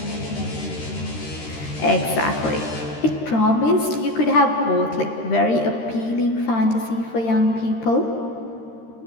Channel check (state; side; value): late; right; 13 ms